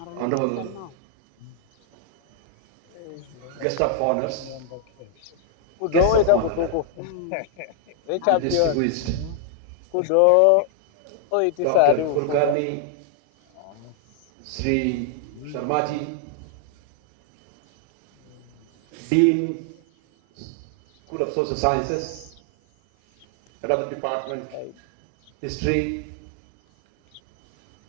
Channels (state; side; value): different; both; correlation 0.00